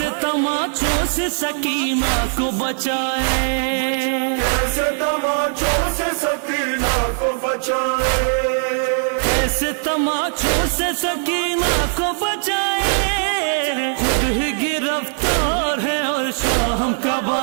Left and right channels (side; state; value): left; silent; 55 dB below the other